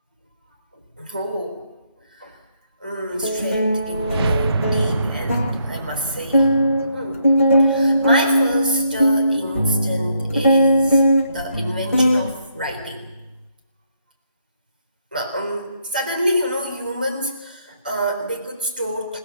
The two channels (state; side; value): inverted; both; correlation -0.75